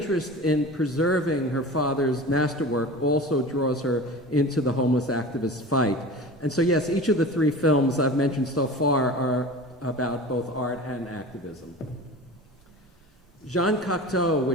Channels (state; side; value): normal; both; correlation 0.35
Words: in preserving her father's masterwork also draws her into the homeless activist fight. And so yes, each of the three films I've mentioned so far are about both art and activism. Jean Cocteau,